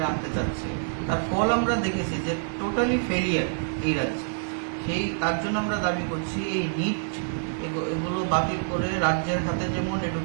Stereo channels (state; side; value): silent; left; digital silence